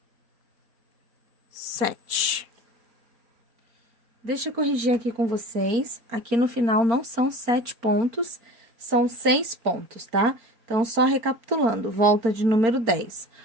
7. Deixa eu corrigir aqui com vocês. Aqui no final não são 7 pontos, são 6 pontos, tá? Então, só recapitulando, volta de número 10.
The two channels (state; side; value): late; left; 4.4 ms